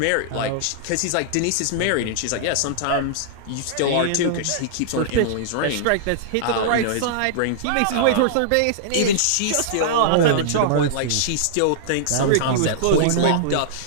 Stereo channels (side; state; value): both; different; correlation -0.02